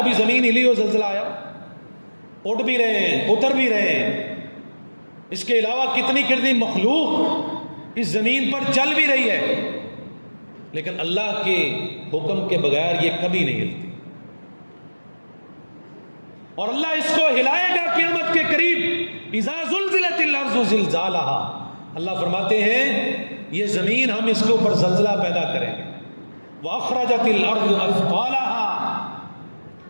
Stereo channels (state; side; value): inverted; both; correlation -1.00